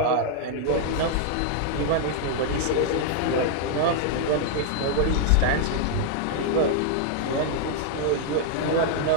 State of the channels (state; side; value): different; both; correlation -0.01